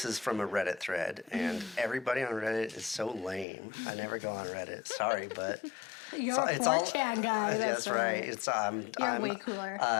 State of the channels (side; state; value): right; drops out; at 3.5 s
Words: is from a Reddit thread, and everybody on Reddit is so lame. I never go on Reddit. Sorry, but You're a 4chan guy. That's right. It's You're way cooler.